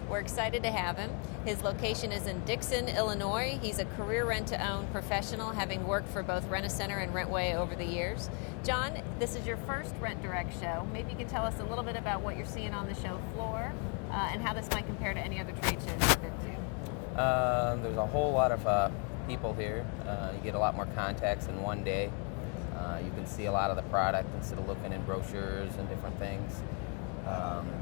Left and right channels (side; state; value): right; quieter; 38.3 dB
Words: We're excited to have him. His location is in Dixon, Illinois. He's a career rent-to-own professional, having worked for both Rent-A-Center and Rentway over the years. John, this is your first Rent Direct show. Maybe you can tell us a little bit about what you're seeing on the show floor and how this might compare to any other trade shows you've been to. There's a whole lot of people here. You get a lot more contacts in one day. You can see a lot of the product instead of looking in brochures and different things.